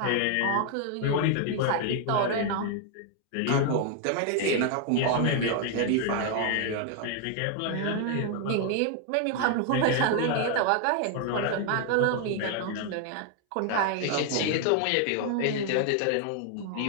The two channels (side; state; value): both; different; correlation 0.00